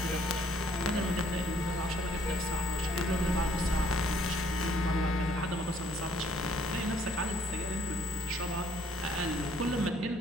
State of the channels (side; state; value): both; normal; correlation 0.63